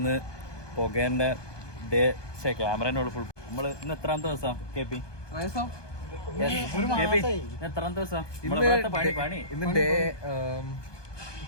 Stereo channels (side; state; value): right; late; 1.2 ms